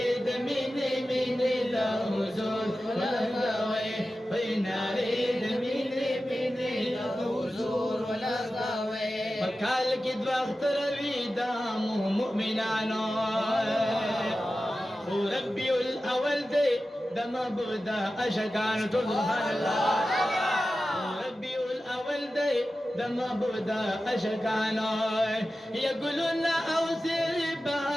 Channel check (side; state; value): both; normal; correlation 0.94